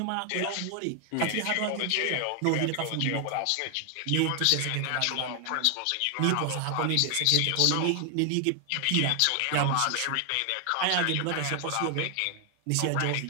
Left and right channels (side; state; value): both; different; correlation 0.00